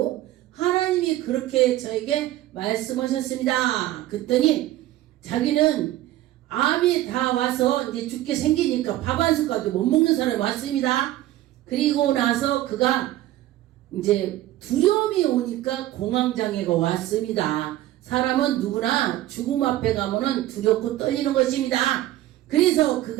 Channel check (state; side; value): quieter; left; 14.7 dB